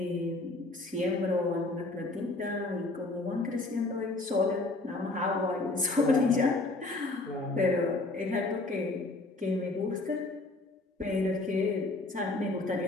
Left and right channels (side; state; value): right; quieter; 3.1 dB